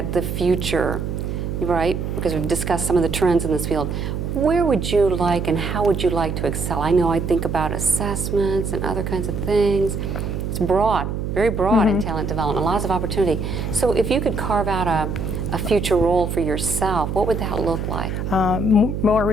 the future, right? Because we've discussed some of the trends in this field. Where would you like and how would you like to excel? I know I think about assessments and other kinds of things. It's broad, very broad in talent development, lots of opportunity. So if you could carve out a future role for yourself, what would that look like? More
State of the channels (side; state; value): right; noise; hum, 3 dB below the sound